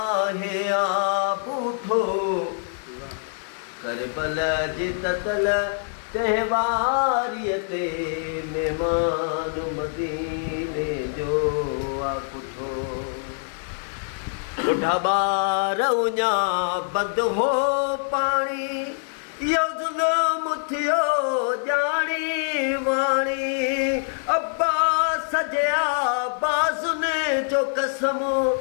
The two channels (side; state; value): right; silent; digital silence